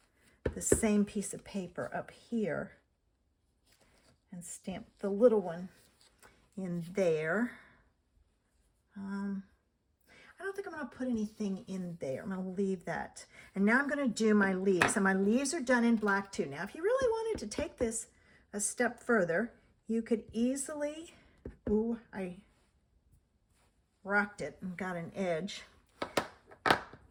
the same piece of paper up here and stamp the little one in there. I don't think I'm going to put anything in there. I'm going to leave that. And now I'm going to do my leaves. And my leaves are done in black too. Now, if you really wanted to take this a step further, you could easily, ooh, I rocked it and got an edge.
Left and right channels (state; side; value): identical; both; correlation 1.00